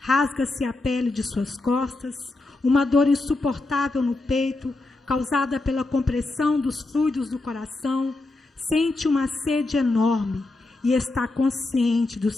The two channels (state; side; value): quieter; right; 3.1 dB